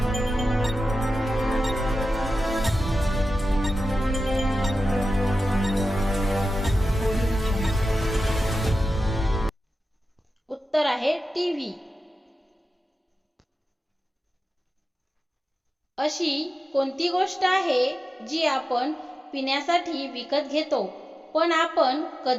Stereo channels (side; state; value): both; normal; correlation 0.93